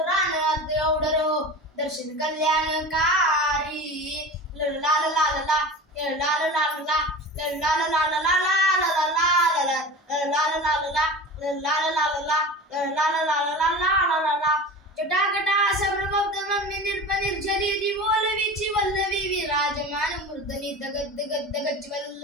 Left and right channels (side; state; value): both; normal; correlation 0.33